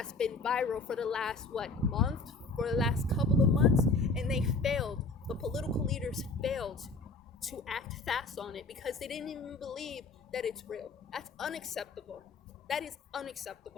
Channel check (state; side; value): quieter; right; 3.6 dB